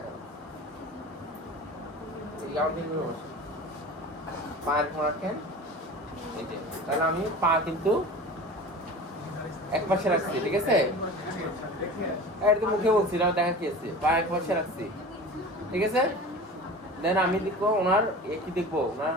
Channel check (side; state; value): both; normal; correlation 0.36